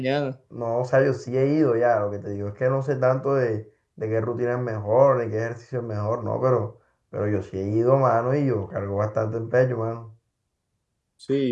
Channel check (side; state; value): both; identical; correlation 1.00